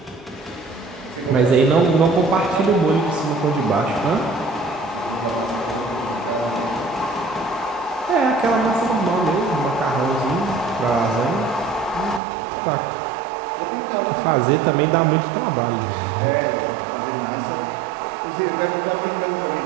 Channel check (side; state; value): left; drops out; at 12.2 s